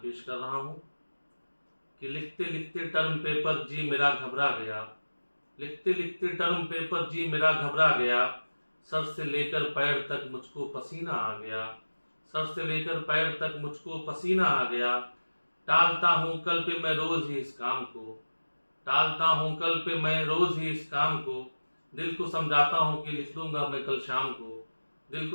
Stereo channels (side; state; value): both; inverted; correlation -1.00